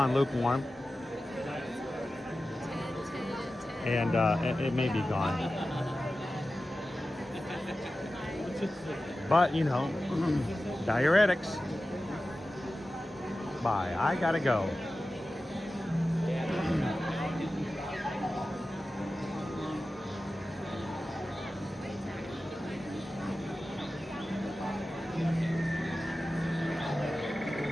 lukewarm. And it may be gone. But, you know, diuretics. Bye. I gotta go.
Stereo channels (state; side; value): normal; both; correlation 0.94